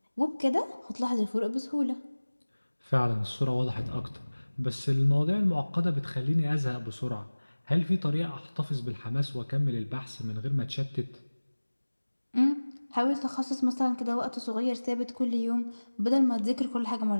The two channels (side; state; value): both; inverted; correlation -1.00